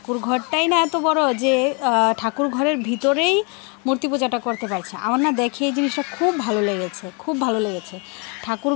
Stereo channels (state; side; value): quieter; right; 34.2 dB